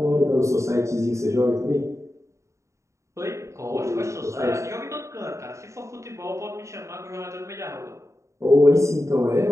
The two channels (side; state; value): left; late; 0.14 ms